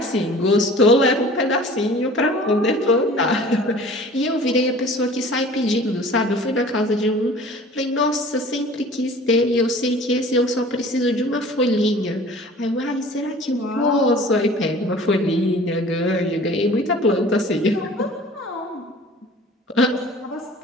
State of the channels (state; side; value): normal; both; correlation 0.45